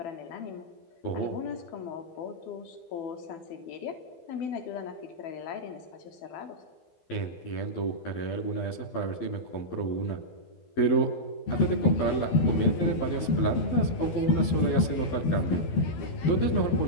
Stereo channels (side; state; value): right; late; 12 ms